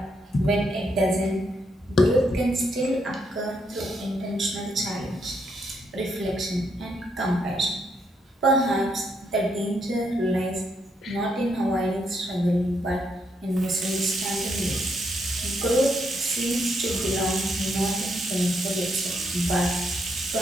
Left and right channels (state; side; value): normal; both; correlation 0.76